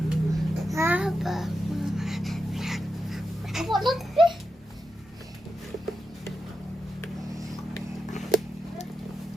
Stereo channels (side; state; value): both; normal; correlation 0.88